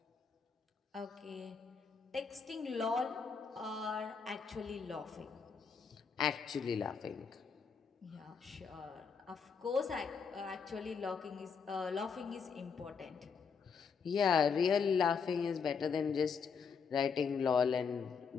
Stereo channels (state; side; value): quieter; right; 5.9 dB